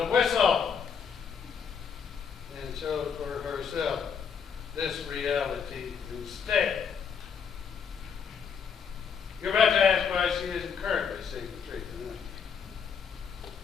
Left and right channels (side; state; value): right; quieter; 6.8 dB